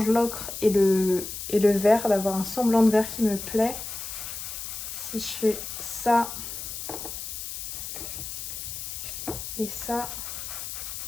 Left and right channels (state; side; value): noise; left; hiss, 7 dB below the sound